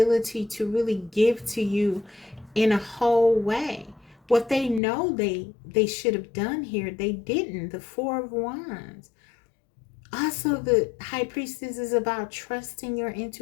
to really give to you in a whole way. What they know they should have done here, they didn't. The Four of Wands. Also, the High Priestess is about trusting your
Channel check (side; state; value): right; drops out; at 4.8 s